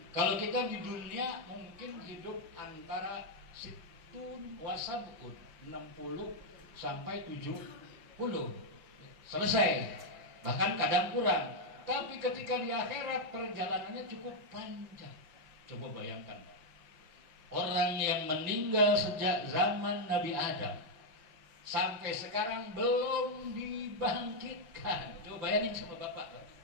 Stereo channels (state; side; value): late; left; 6.0 ms